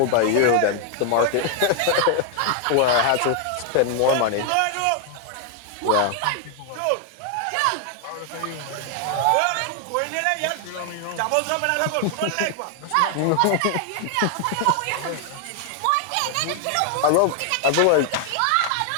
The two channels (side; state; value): both; different; correlation 0.00